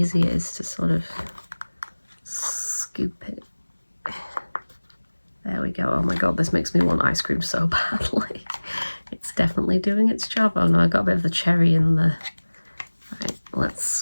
it is to sort of scoop it. There we go. Oh my god, this makes me want ice cream so badly. It's definitely doing its job. Oh no, I got a bit of the cherry in the... Right, let's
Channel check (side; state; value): both; inverted; correlation -1.00